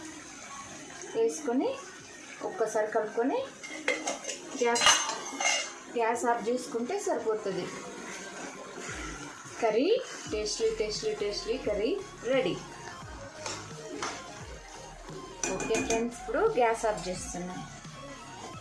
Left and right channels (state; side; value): identical; both; correlation 1.00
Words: వేసుకొని ఒక్కసారి కలుపుకొని గ్యాస్ ఆఫ్ చేసుకుంటే సరిపోతుంది. Curry tasty curry ready. Okay friends, ఇప్పుడు గ్యాస్ ఆఫ్ చేస్తున్నాను.